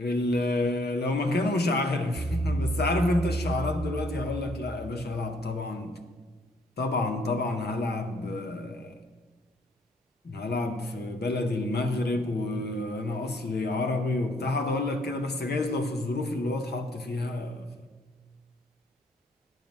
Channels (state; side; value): normal; both; correlation 0.65